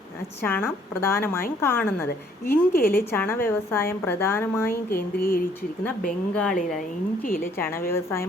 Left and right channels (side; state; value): both; normal; correlation 0.63